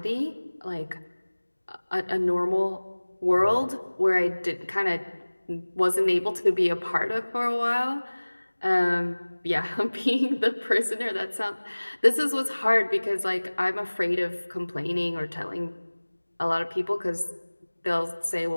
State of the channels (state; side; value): inverted; both; correlation -1.00